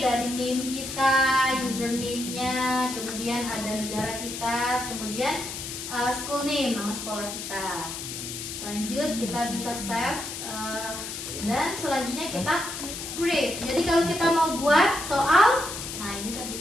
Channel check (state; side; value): noise; left; hiss, 7 dB below the sound